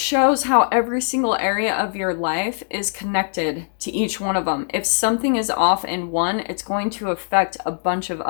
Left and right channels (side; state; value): right; silent; digital silence